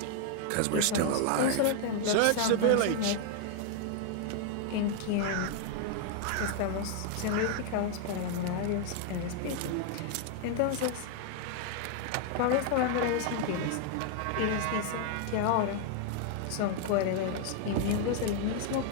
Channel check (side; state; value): both; different; correlation 0.00